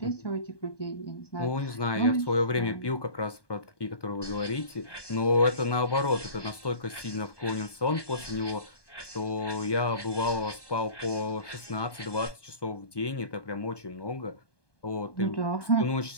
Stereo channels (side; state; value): right; late; 1.2 ms